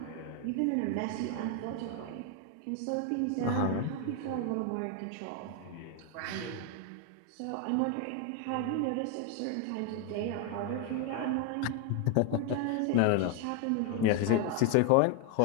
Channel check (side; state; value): both; different; correlation 0.01